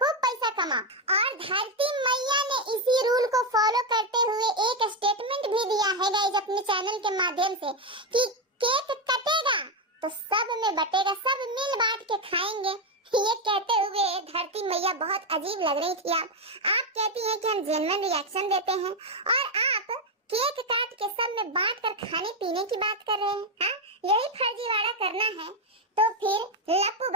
पैसा कमा। और धरती मैया ने इसी रूल को फॉलो करते हुए एक स्टेटमेंट भी दिया है गाइस अपने चैनल के माध्यम से कि केक कटेगा तो सब में बटेगा, सब मिल बांट के खाएंगे। ये कहते हुए धरती मैया बहुत अजीब लग रही थी। आप कहती हैं कि हम जेन्युइन रिएक्शन देते हैं, और आप केक काट के सब में बांट कर खाने पीने की बात कर रहे हैं। हाँ, यही फर्जीवाड़ा करना है तो फिर लप्पू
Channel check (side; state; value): both; normal; correlation 0.07